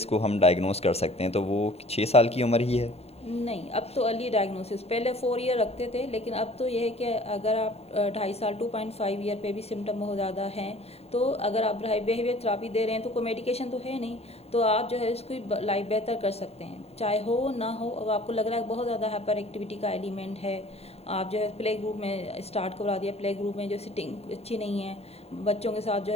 हम डायग्नोस कर सकते हैं, तो वो 6 साल की उम्र ही है? नहीं, अब तो अर्ली डायग्नोसिस, पहले 4 ईयर रखते थे, लेकिन अब तो यह है कि अगर आप 2.5 साल 2.5 ईयर पे भी सिम्टम बहुत ज़्यादा हैं, तो अगर आप बिहेवियर थेरापी दे रहे हैं तो कोई मेडिकेशन तो है नहीं, तो आप जो है उसकी लाइफ बेहतर कर सकते हैं, चाहे हो ना हो। अब आपको लग रहा है बहुत ज़्यादा हाइपर एक्टिविटी का एलिमेंट है, आप जो है प्ले ग्रुप में स्टार्ट करवा दिया, प्ले ग्रुप में जो सिटिंग अच्छी नहीं है, बच्चों के साथ जो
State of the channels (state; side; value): late; right; 0.30 ms